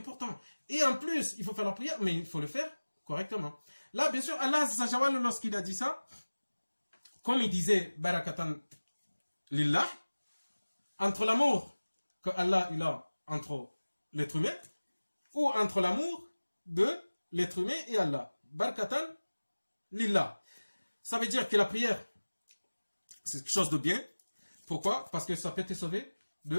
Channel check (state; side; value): inverted; both; correlation -1.00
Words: Et en plus, il faut faire la prière, mais il faut le faire correctement. Là, bien sûr, Allah Azzawajal, lorsqu'il a dit ça, comme il disait, Barakatan Lillah, entre l'amour que Allah il a entre l'être humain, ou entre l'amour de l'être humain et Allah. Barakatan Lillah. Ça veut dire que la prière, c'est quelque chose de bien. Pourquoi? Parce que ça peut te sauver